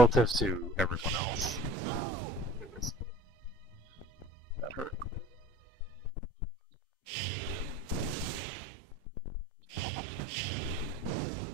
to everyone else, that hurt.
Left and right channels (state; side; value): normal; both; correlation 0.44